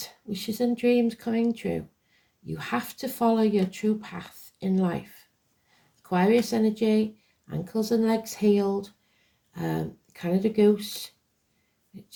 Wishes and dreams coming true. You have to follow your true path in life. Aquarius energy, ankles and legs healed. Canada Goose,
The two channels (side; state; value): both; identical; correlation 1.00